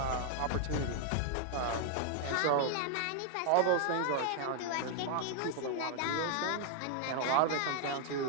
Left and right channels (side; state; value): both; different; correlation 0.00